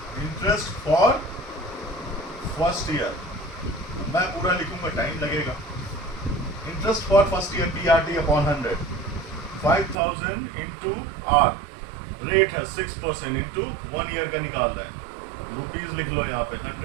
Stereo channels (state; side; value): drops out; left; at 10.0 s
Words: इंटरेस्ट फॉर फर्स्ट ईयर मैं पूरा लिखूंगा, टाइम लगेगा. Interest for first year PRT upon 100. 5,000 into R. Rate है 6% इंटू 1 ईयर का निकालना है. रुपीज लिख लो यहाँ पे